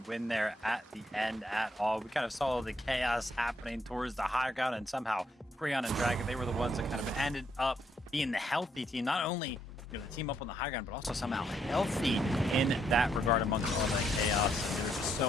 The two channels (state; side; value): normal; both; correlation 0.74